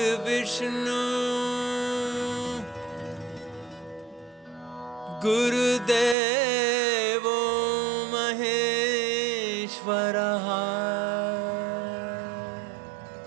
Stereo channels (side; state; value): left; drops out; at 6.2 s